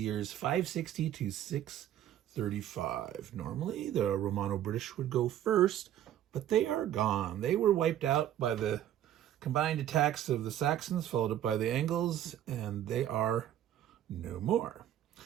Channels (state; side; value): quieter; left; 11.5 dB